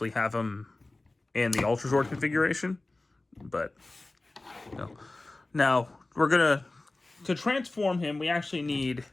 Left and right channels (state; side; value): quieter; right; 3.0 dB